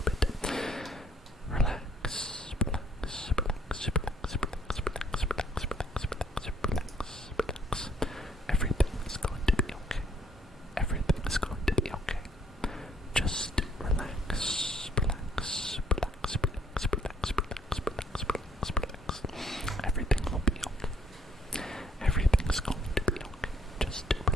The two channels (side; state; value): both; normal; correlation 0.64